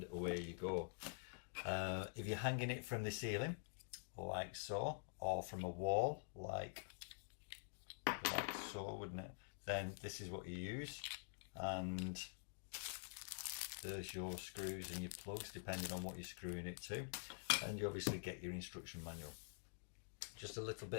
away you go. If you're hanging it from the ceiling like so, or from a wall like so, wouldn't it, then this is what you use, and there's your screws and your plugs depending on what you're screwing it to, and you obviously get your instruction manual. Just a little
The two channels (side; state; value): right; silent; digital silence